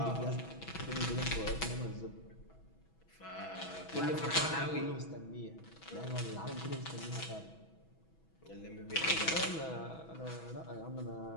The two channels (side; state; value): right; late; 6.1 ms